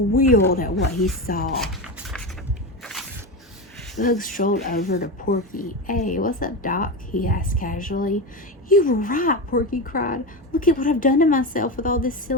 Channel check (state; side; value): normal; both; correlation 0.18